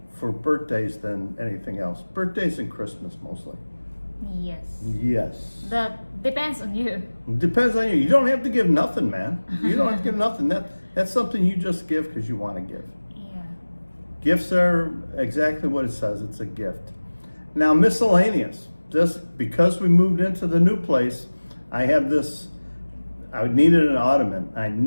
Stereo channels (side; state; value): both; inverted; correlation -1.00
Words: for birthdays than anything else. Birthdays and Christmas mostly. Yes. Yes. That depends on you. Depends on you. You don't have to give nothing, man. You don't have to give nothing. That's something you just give because you want to give. Yeah. Gifts are exactly what it says. It's a gift. Now, miscellaneous. Just because we moved into the new place, I have this. I needed an ottoman. I